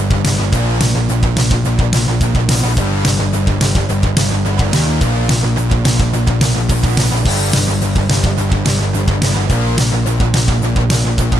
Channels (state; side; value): normal; both; correlation 0.84